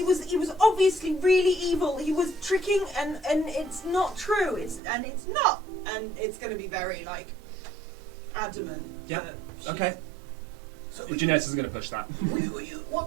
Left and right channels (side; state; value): left; drops out; at 4.8 s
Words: was obviously really evil. He was tricking, and it's not true. It's not, and it's going to be very like adamant. Yeah. that Okay. So Geneius is going to push that.